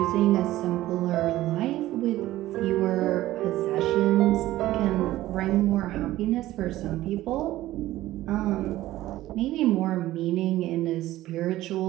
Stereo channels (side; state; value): left; quieter; 15.5 dB